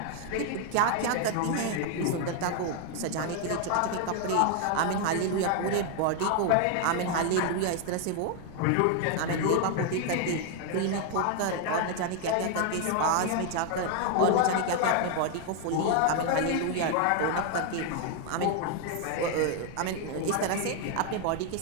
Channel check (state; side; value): different; both; correlation 0.00